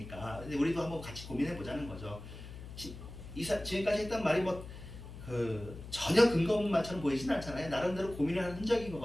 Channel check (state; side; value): noise; left; hum, 13 dB below the sound